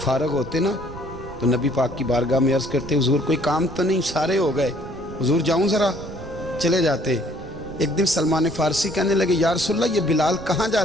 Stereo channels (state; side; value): noise; right; rumble, 16 dB below the sound